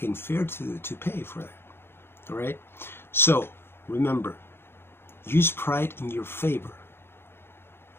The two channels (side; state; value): right; late; 0.11 ms